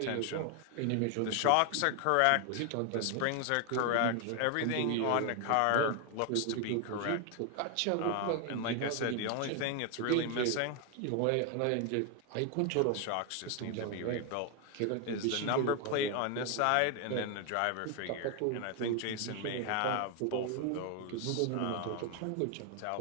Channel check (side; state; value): both; different; correlation 0.01